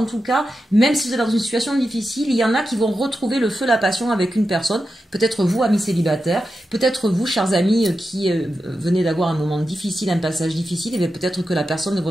tout cas, même si vous êtes dans une situation difficile, il y en a qui vont retrouver le feu, la passion avec une personne. Peut-être vous, amis célibataires, peut-être vous, chers amis, qui venez d'avoir un moment difficile, un passage difficile, et peut-être que la personne de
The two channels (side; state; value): both; normal; correlation 0.90